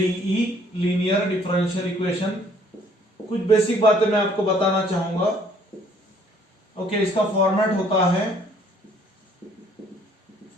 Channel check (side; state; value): both; normal; correlation 0.60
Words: लीनियर डिफरेंशियल इक्वेशन। कुछ बेसिक बातें मैं आपको बताना चाहूंगा। ओके, इसका फॉर्मेट होता है,